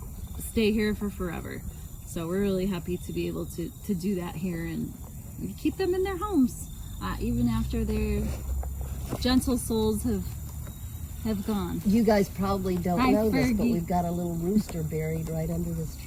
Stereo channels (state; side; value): identical; both; correlation 1.00